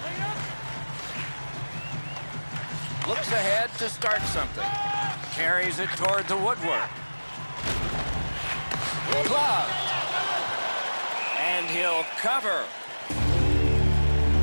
Looks ahead to start something. Carries it toward the woodwork. Gloved. And he'll cover.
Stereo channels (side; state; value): both; inverted; correlation -1.00